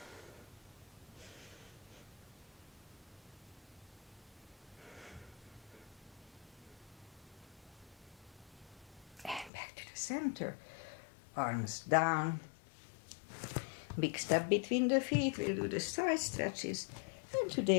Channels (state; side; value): drops out; right; at 9.5 s